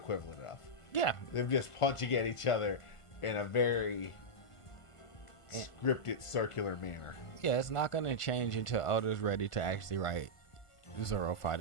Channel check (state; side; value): late; right; 1.5 ms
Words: of. Yeah, they're just punching at each other in a very scripted, circular manner. Yeah, it's not going to change until Oda's ready to actually write Zoro